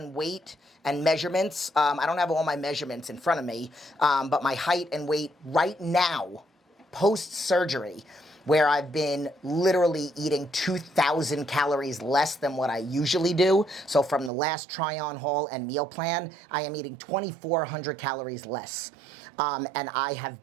weight and measurements, I don't have all my measurements in front of me, but my height and weight right now, post-surgery, where I've been literally eating 2,000 calories less than what I usually do. So from the last try-on haul and meal plan, I am eating 2,400 calories less. And I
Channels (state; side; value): drops out; left; at 14.3 s